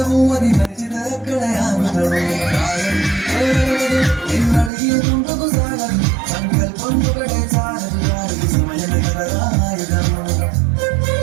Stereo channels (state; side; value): drops out; left; at 4.7 s